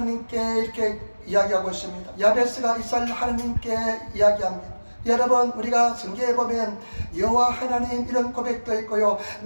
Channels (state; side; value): inverted; both; correlation -1.00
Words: 이렇게 이야기하고 있습니다. 야베스가 이스라엘 하나님께 이야기합니다. 여러분 우리가 성경에 보면 여호와 하나님 이런 고백도 있고요